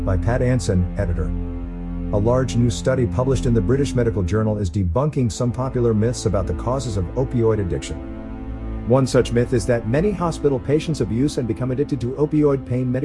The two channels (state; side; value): identical; both; correlation 1.00